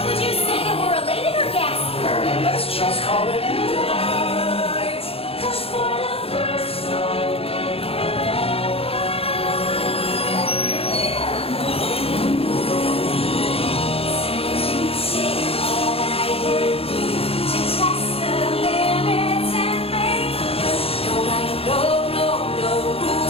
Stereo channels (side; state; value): right; late; 0.28 ms